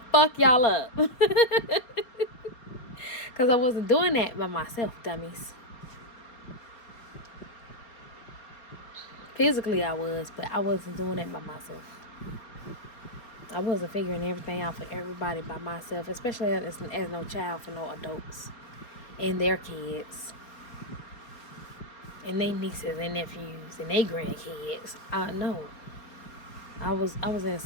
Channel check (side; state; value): right; late; 4.5 ms